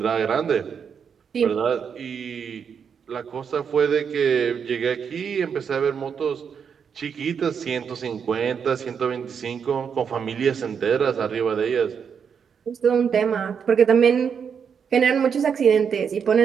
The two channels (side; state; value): left; quieter; 6.9 dB